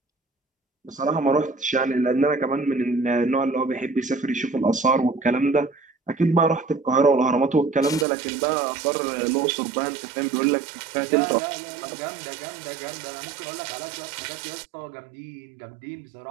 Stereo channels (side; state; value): left; drops out; at 8.1 s